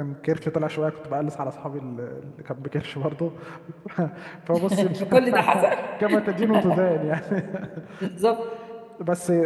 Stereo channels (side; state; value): both; identical; correlation 1.00